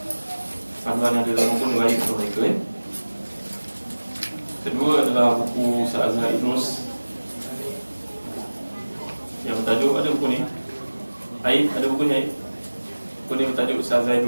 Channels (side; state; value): both; inverted; correlation -1.00